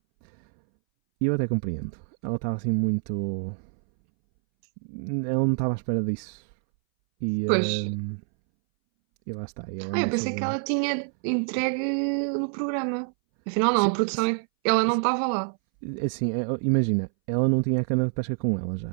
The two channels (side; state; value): left; silent; 61 dB below the other